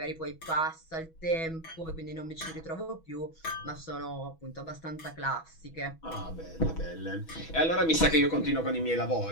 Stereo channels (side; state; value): right; late; 6.2 ms